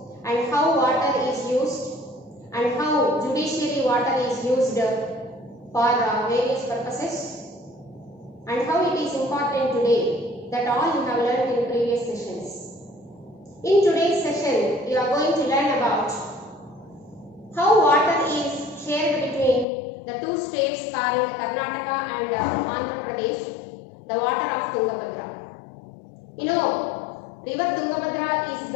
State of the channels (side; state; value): right; drops out; at 19.7 s